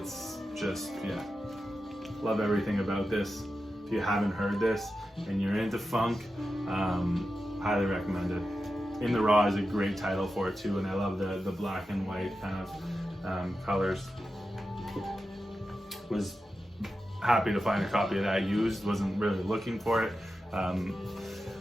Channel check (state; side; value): normal; both; correlation 0.91